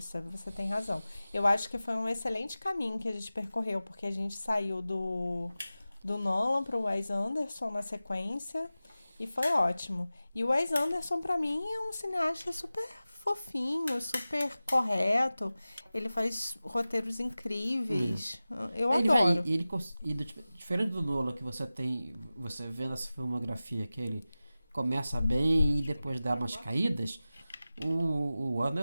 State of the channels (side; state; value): both; inverted; correlation -0.96